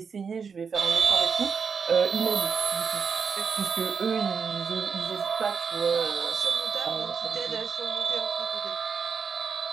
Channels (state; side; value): quieter; left; 5.9 dB